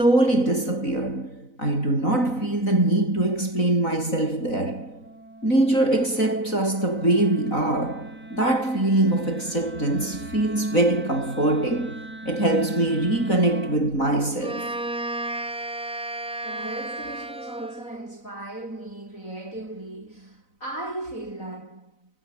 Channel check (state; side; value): late; right; 4.0 ms